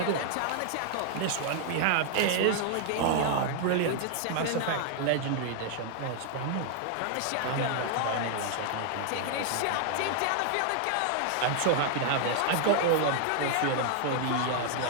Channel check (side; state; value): both; different; correlation 0.00